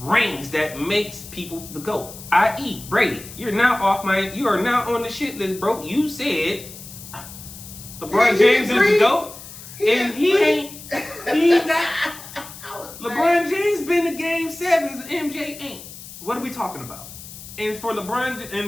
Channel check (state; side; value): noise; left; hiss, 15 dB below the sound